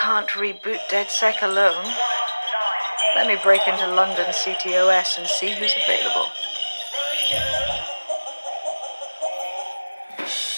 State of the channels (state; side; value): inverted; both; correlation -1.00